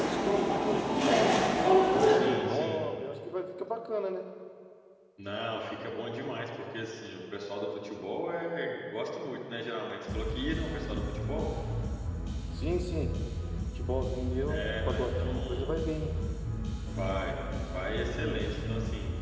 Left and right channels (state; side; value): identical; both; correlation 1.00